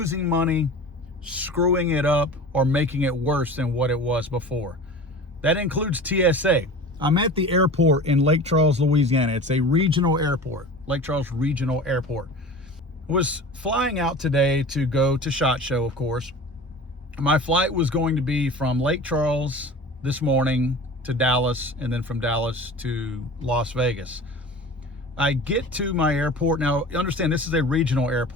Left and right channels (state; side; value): normal; both; correlation 0.37